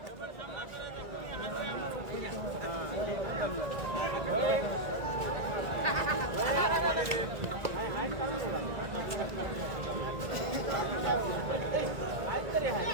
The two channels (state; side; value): late; left; 1.8 ms